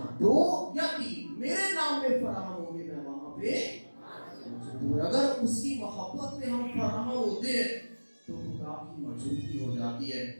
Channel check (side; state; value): both; inverted; correlation -1.00